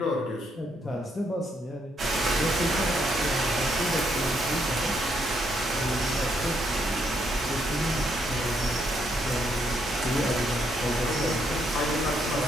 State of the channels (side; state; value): both; normal; correlation 0.74